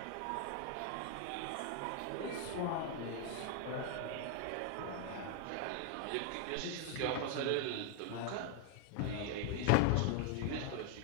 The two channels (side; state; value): both; different; correlation 0.00